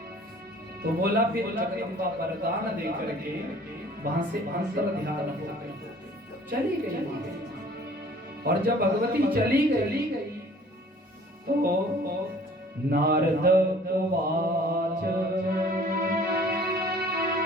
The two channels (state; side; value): normal; both; correlation 0.52